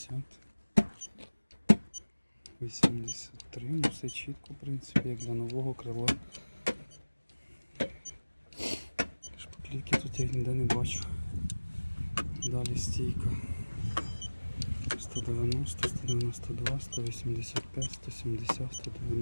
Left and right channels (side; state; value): both; inverted; correlation -1.00